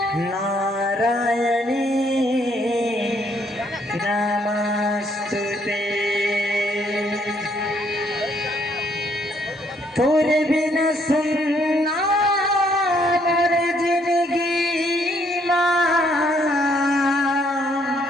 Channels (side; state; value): both; normal; correlation 0.69